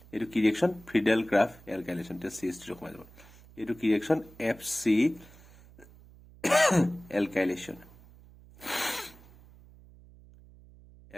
এইটো কি ৰিয়েকশ্যন ফ্ৰিডেল গ্ৰাফ এলকাইলেশ্যন এতিয়া CH3 সোমাই যাব এইটো কি ৰিয়েকশ্যন FC এলকাইলেশ্যন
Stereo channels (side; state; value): right; noise; hum, 23 dB below the sound